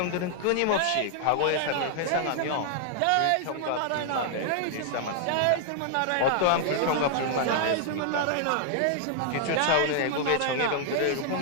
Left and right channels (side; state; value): both; different; correlation 0.00